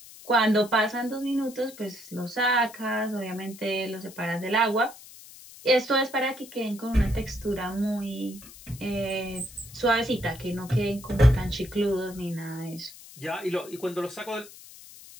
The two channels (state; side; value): noise; left; hiss, 18 dB below the sound